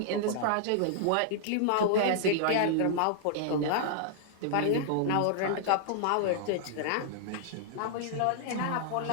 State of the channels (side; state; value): both; different; correlation -0.01